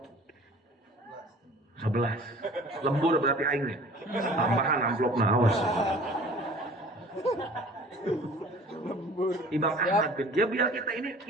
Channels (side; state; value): both; normal; correlation 0.47